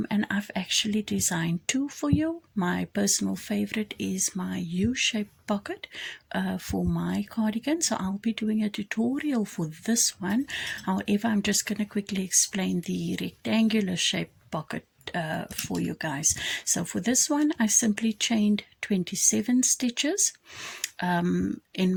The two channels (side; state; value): both; identical; correlation 1.00